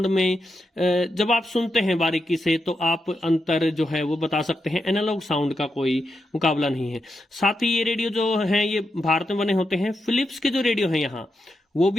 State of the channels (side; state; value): both; normal; correlation 0.86